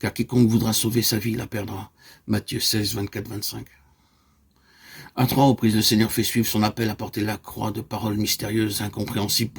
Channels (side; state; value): both; identical; correlation 1.00